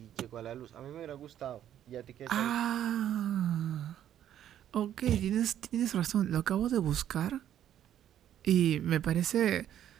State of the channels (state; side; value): quieter; left; 10.8 dB